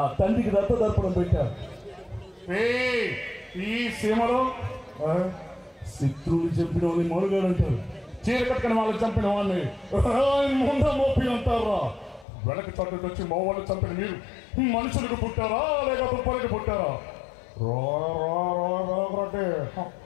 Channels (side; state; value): right; drops out; at 12.2 s